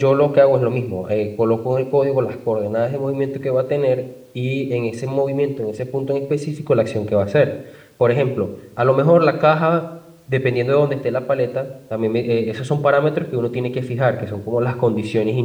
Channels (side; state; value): both; identical; correlation 1.00